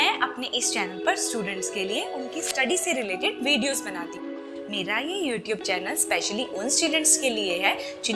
अपने इस चैनल पर स्टूडेंट्स के लिए उनकी स्टडी से रिलेटेड वीडियोस बनाती हूँ। मेरा ये यूट्यूब चैनल स्पेशली उन स्टूडेंट्स के लिए है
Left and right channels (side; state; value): both; identical; correlation 1.00